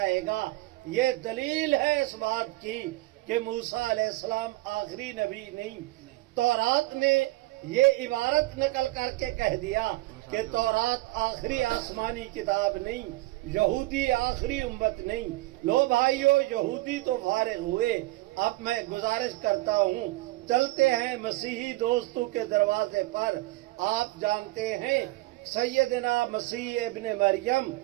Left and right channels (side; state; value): left; quieter; 19.9 dB